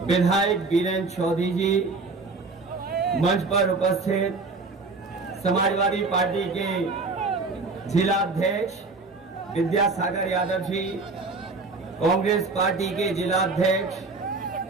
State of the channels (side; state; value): left; quieter; 3.8 dB